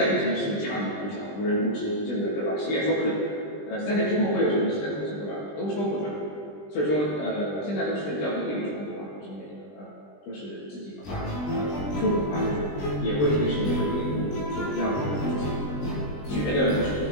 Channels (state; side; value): late; right; 20 ms